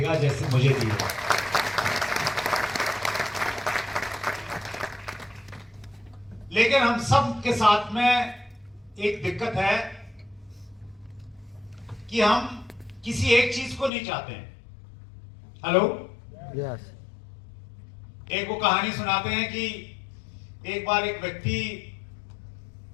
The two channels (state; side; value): drops out; right; at 13.9 s